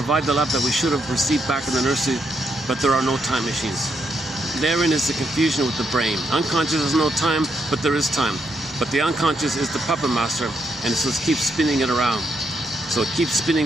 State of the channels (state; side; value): normal; both; correlation 0.78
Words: the love that we should have received back in the nursery, but there are no time machines. Therein is the confusion with the brain. Unconscious has no time, but there is time. But the unconscious is the puppet master, and so it keeps spinning it around. So it keeps spinning